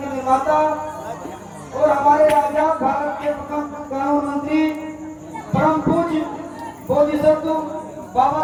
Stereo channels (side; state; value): both; identical; correlation 1.00